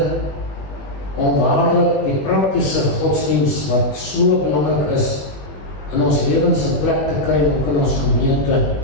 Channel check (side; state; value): right; late; 21 ms